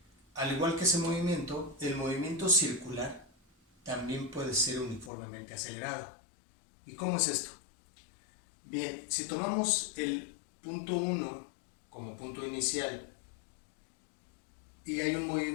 Al igual que ese movimiento, el movimiento circular también puede ser uniformemente acelerado. ¿Y cómo es esto? Bien, si tomamos el punto 1 como punto inicial y hay un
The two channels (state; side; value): drops out; right; at 5.1 s